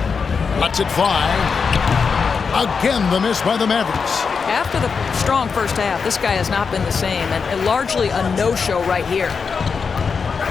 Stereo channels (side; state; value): right; quieter; 5.5 dB